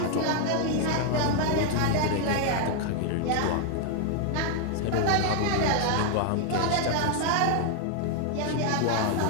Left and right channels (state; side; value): different; both; correlation 0.00